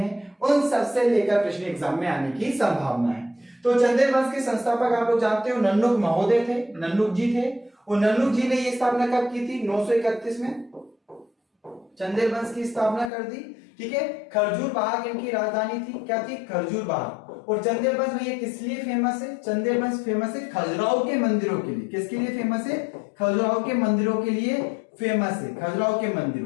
उन सबसे लेकर प्रश्न एग्जाम में आने की संभावना है। तो चंदेल वंश के संस्थापक आप लोग जानते हो नन्नुक महोदय थे, नन्नुक जी थे। और नन्नुक जी ने ये स्थापना कब की थी? 931 में चंदेल वंश की स्थापना कर दी। ठीक है, खरजूर बाग इनकी राजधानी थी। क्या थी? खरजूर बाग। और चंदेल वंश में ये किस लिए फेमस है? चंदेल वंश फेमस है खजुराहो के मंदिरों के लिए। किसके लिए फेमस है? खजुराहो के मंदिरों के लिए फेमस है, खजुराहो के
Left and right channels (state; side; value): drops out; right; at 13.1 s